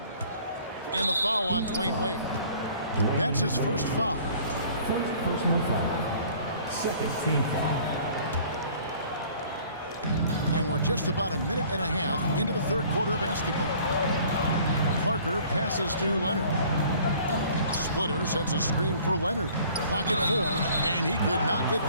And the foul on Dwayne Wade. That's his first foul. First personal foul. Second team foul. And we're just about a minute and a half into the third quarter of basketball. Parker passes to Leonard. Splitter sets a screen for Leonard. Clock at 4, and he could not get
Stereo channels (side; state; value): both; inverted; correlation -0.53